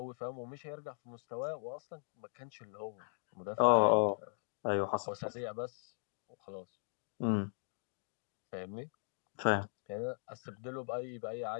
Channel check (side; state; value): right; silent; digital silence